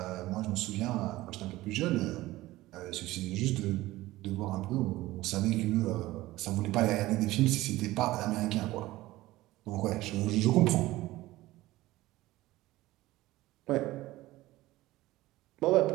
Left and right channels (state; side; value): quieter; left; 17.5 dB